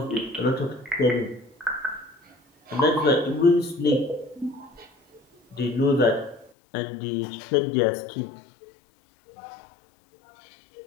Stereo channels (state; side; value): drops out; right; at 6.5 s